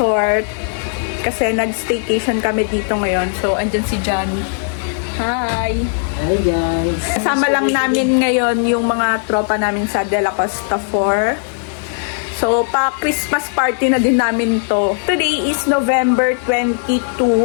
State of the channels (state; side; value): silent; right; digital silence